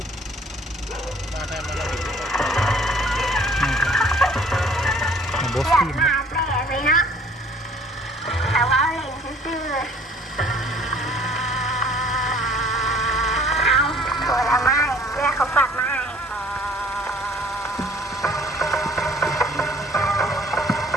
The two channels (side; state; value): both; normal; correlation 0.55